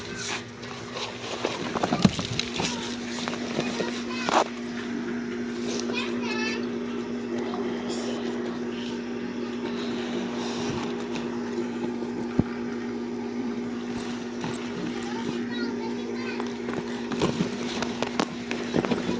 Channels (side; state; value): both; identical; correlation 1.00